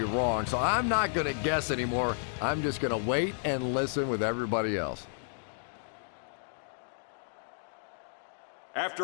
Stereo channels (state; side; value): silent; right; digital silence